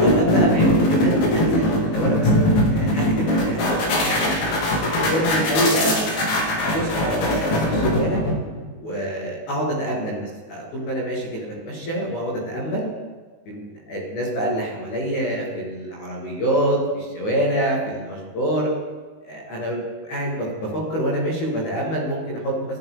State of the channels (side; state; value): right; late; 19 ms